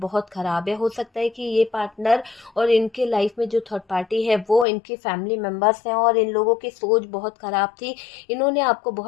खराब है। हो सकता है कि ये पार्टनर और इनके लाइफ में जो थर्ड पार्टी है वो इनकी फैमिली मेंबर्स हैं, और इन लोगों की सोच बहुत खराब थी। इन्होंने आपको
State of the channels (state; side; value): drops out; right; at 4.7 s